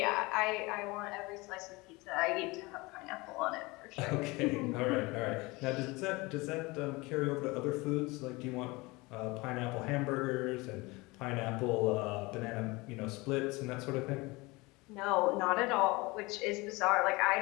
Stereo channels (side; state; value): right; quieter; 23.7 dB